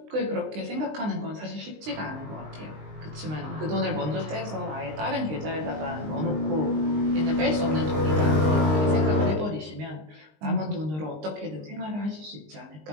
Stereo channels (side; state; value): left; late; 19 ms